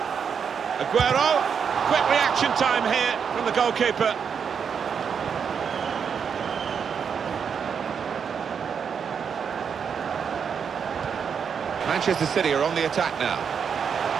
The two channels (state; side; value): quieter; left; 6.8 dB